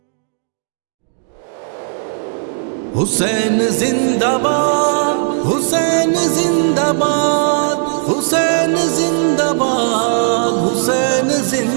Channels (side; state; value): left; silent; digital silence